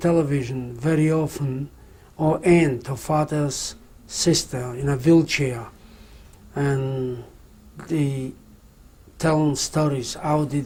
very often. Her aunt, her father's sister, in a wheelchair, and they telling stories. How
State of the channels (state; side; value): identical; both; correlation 1.00